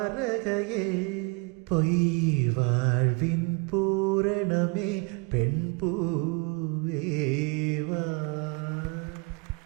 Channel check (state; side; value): quieter; left; 27.9 dB